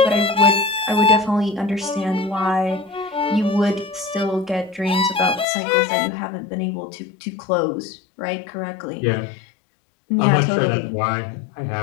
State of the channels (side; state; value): right; drops out; at 5.5 s